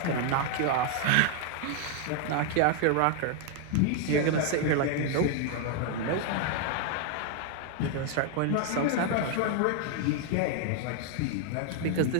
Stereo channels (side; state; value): both; different; correlation 0.00